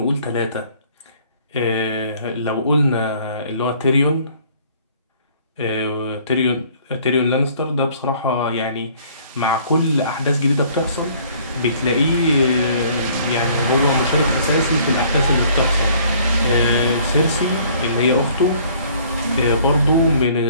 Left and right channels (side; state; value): both; inverted; correlation -0.57